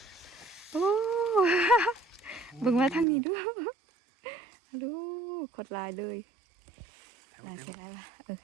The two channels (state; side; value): drops out; left; at 3.1 s